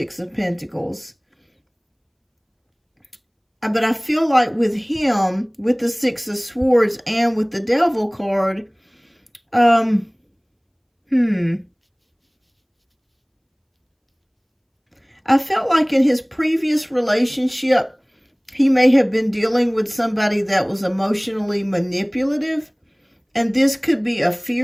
of Pentacles. But I feel like with him, with the Six of Swords and with the Devil card, I felt like in his previous relationship, he may have been dealing with somebody that was emotionally manipulative. And this could be a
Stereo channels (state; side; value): identical; both; correlation 1.00